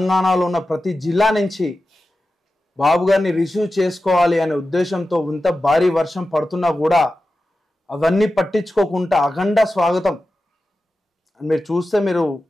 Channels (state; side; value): normal; both; correlation 0.93